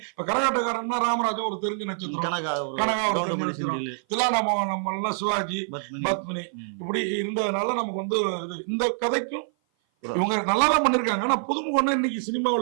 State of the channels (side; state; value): left; silent; 56 dB below the other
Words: இப்ப கரகாட்டக்காரன்னா ராமராஜா ஒரு தெரிஞ்ச நட்சத்திரம், கனகா ஒரு தெரிஞ்ச நட்சத்திரம், தில்லானாம சிவாஜி, பத்மினி இப்படி இருந்ததுனால நமக்கு வந்து இந்த கதைக்கும் இவங்க நல்லாதான் பண்ணிருக்காங்க. ஆனா புதுமுகம்னா இன்னைக்கு